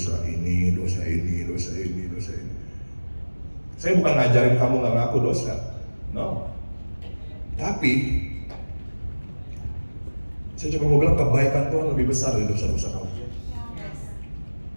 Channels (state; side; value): inverted; both; correlation -1.00